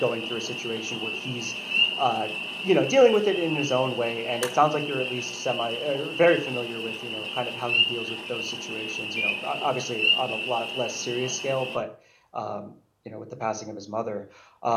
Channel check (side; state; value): both; identical; correlation 1.00